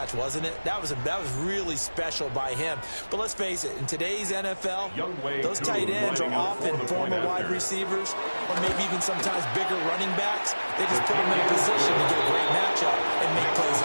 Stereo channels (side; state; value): both; inverted; correlation -1.00